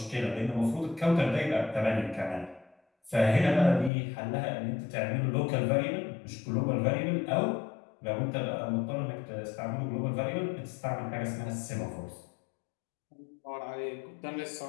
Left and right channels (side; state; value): right; drops out; at 3.9 s